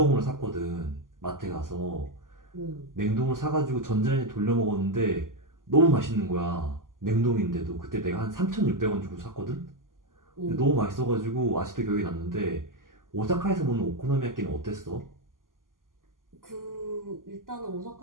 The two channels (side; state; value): left; late; 0.90 ms